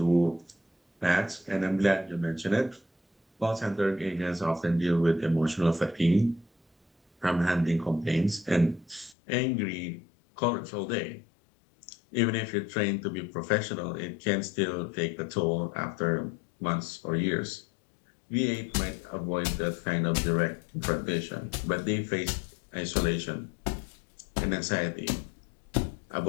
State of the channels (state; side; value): drops out; right; at 9.2 s